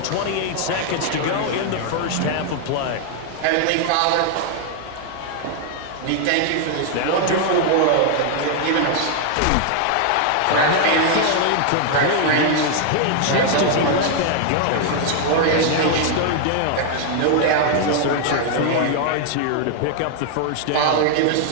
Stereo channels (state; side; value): different; both; correlation 0.00